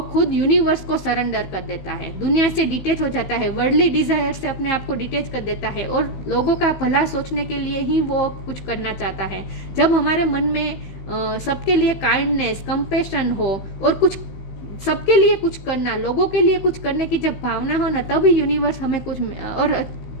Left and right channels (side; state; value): right; late; 15 ms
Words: खुद यूनिवर्स को सरेंडर कर देता है, दुनिया से डिटेच हो जाता है, वर्ल्डली डिजायर से अपने आप को डिटेच कर देता है और लोगों का भला सोचने के लिए ही वो कुछ करना चाहता है। जब हमारे मन में सबके लिए काइंडनेस, कंपैशन हो और कुछ सबके लिए कुछ करना, लोगों के लिए कुछ करने की जब भावना हो ना, तभी यूनिवर्स हमें कुछ